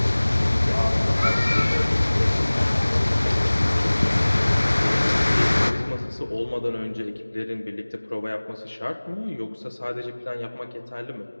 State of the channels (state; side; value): inverted; both; correlation -1.00